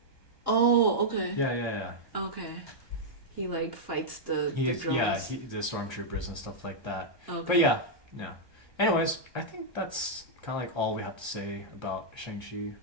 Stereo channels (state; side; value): late; right; 1.2 ms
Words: Oh, okay. Yeah. Okay. He like fights the He's drones. the stormtroopers and stuff like that. Okay. But yeah. Anyways, I think that's kind of like all we have to say about Shang-Chi